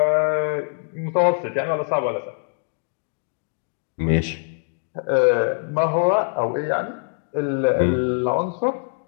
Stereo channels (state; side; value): silent; right; 59 dB below the other